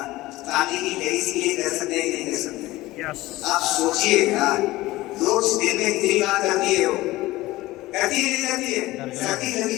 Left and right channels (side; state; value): right; quieter; 18.3 dB